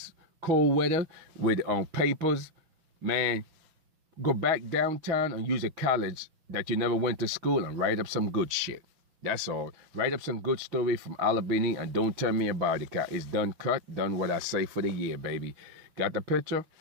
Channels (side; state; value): left; late; 6.1 ms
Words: cold weather with papers. Man, go back downtown and use a college that you never went to school and write up some good shit. That's all. Write up some good story from Albany and don't tell me about it. It's done cut, done what I say for the year, baby. Got the picture?